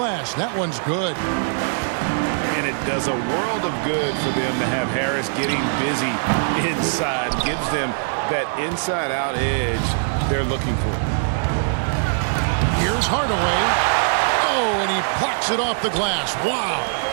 That one's good. And it does a world of good for them to have Harris getting busy inside. Gives them that inside-out edge they're looking for. Here's Hardaway. Oh, and he plucks it off the glass. Wow.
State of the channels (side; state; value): left; silent; digital silence